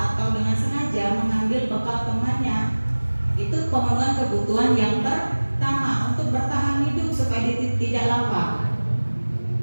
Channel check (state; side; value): inverted; both; correlation -1.00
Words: atau dengan sengaja mengambil bekal temannya. Itu pemenuhan kebutuhan yang pertama untuk bertahan hidup supaya tidak lapar.